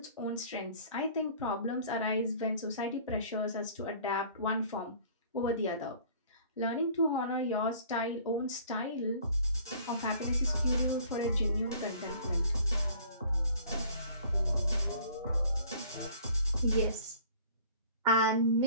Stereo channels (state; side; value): inverted; both; correlation -0.51